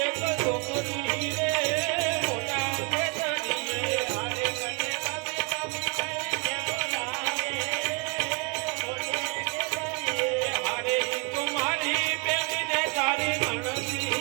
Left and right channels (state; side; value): quieter; left; 33.9 dB